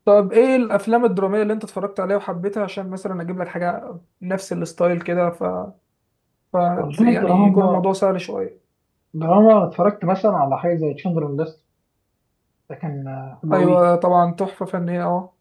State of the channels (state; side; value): identical; both; correlation 1.00